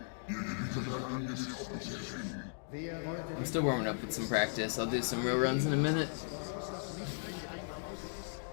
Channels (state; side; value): silent; right; digital silence